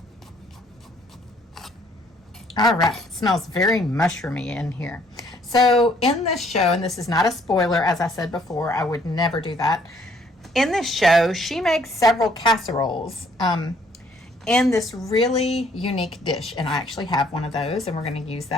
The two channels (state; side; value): normal; both; correlation 0.63